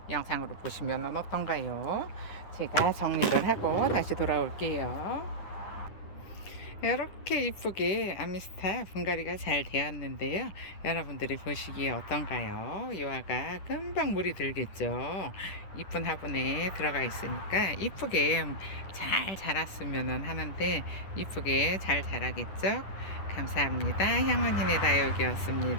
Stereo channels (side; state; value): right; late; 10 ms